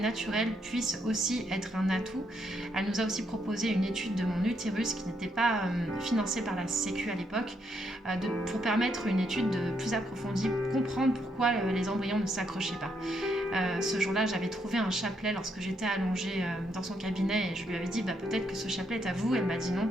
puisse aussi être un atout. Elle nous a aussi proposé une étude de mon utérus qui n'était pas financée par la Sécu à l'époque, pour permettre une étude plus approfondie, comprendre pourquoi les embryons ne s'accrochaient pas. Ce jour-là, j'avais trouvé un chapelet lorsque j'étais allongée dans son cabinet et je lui avais dit peut-être que ce chapelet est à vous. Elle m'a dit non,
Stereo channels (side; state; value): both; normal; correlation 0.76